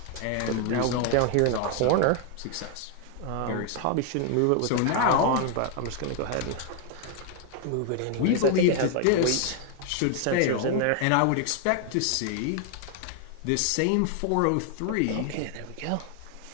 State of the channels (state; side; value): different; both; correlation 0.00